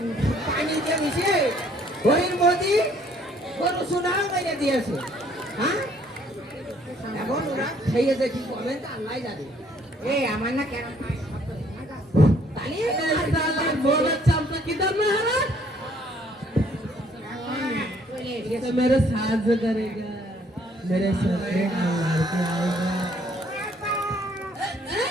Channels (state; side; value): normal; both; correlation 0.63